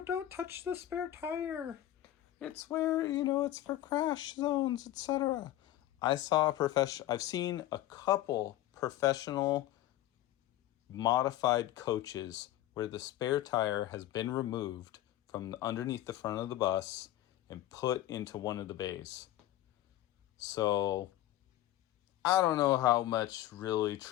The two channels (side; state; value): right; quieter; 14.1 dB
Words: don't touch the spare tire. It's where, you know, it's for crash zones, etc. I've seen a couple professional modified coaches where the spare tire has been removed from underneath the front of the bus and put into one of the bays. So I don't know how much really